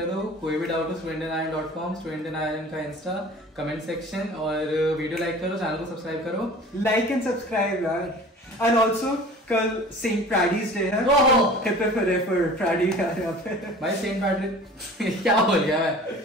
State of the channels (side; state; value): both; normal; correlation 0.43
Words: दो. कोई भी डाउट हो studentin.com, studentin का इंस्टा कमेंट सेक्शन, और वीडियो लाइक करो, चैनल को सब्सक्राइब करो. लाइक एंड सब्सक्राइब यार. एंड ऑल्सो कल सेंट पैडीज डे है. फॉर पैडी यार यहाँ पे. भाई सेंट पैडी क्या बोल गया मैं?